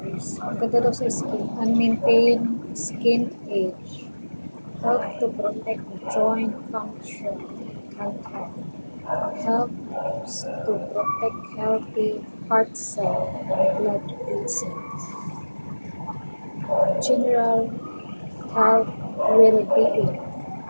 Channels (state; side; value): inverted; both; correlation -1.00